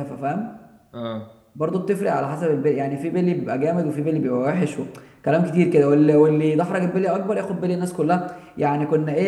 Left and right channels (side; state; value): both; identical; correlation 1.00